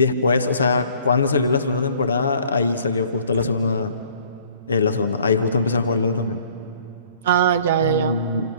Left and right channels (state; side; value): inverted; both; correlation -0.55